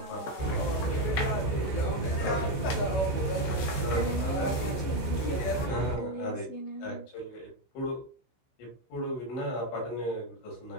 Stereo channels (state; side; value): late; right; 16 ms